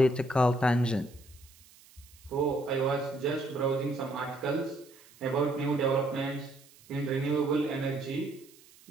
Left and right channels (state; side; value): noise; right; hiss, 25 dB below the sound